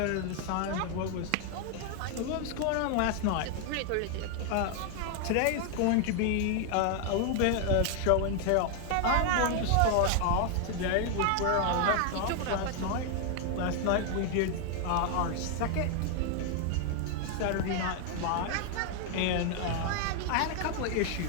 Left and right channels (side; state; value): both; different; correlation 0.00